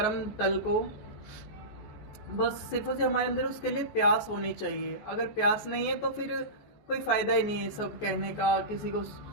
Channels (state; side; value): late; right; 14 ms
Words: तल को, बस सिर्फ और सिर्फ हमारे अंदर उसके लिए प्यास होनी चाहिए। अगर प्यास नहीं है तो फिर कोई फायदा ही नहीं है सब कहने का, किसी को